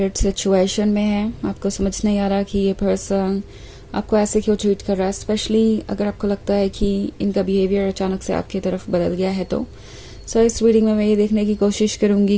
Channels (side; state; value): both; identical; correlation 1.00